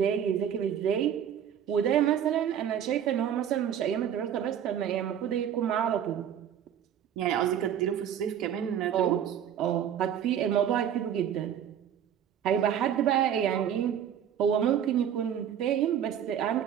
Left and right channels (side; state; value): left; quieter; 9.4 dB